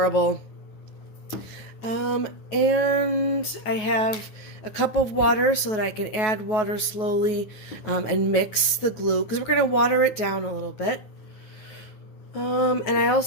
And I have a cup of water so that I can add water slowly and mix the glue because we're going to water it down a little bit. And I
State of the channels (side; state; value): right; late; 9.3 ms